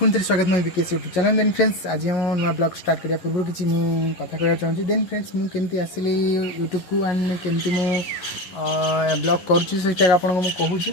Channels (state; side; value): late; right; 11 ms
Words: थे स्वागत मैं विकेश यूट्यूब चैनल देन फ्रेंड्स आज हम नुआ ब्लॉग स्टार्ट करिया पूर्व किसी कथा कहना चाहूँगी देन फ्रेंड्स मुझे आसली यूट्यूब को एंड केमती मु ब्लॉग करुँचा आपको कहूँ